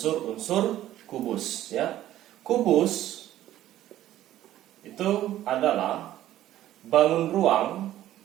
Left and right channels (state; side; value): quieter; left; 13.3 dB